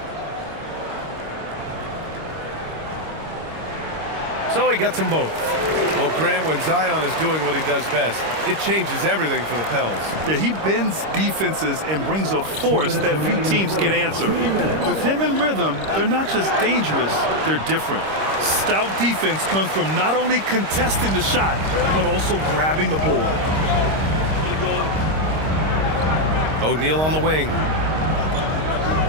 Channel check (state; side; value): late; left; 26 ms